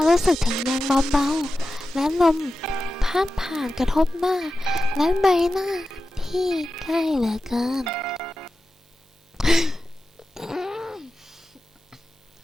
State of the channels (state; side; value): normal; both; correlation 0.93